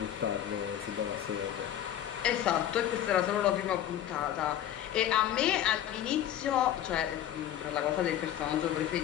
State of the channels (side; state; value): right; quieter; 11.2 dB